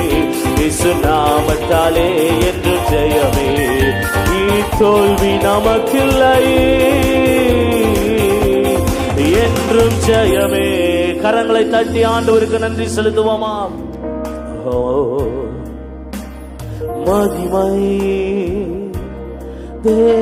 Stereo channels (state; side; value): identical; both; correlation 1.00